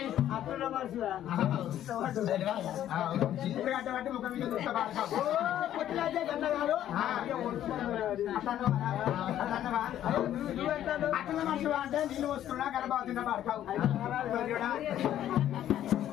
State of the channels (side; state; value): right; quieter; 11.6 dB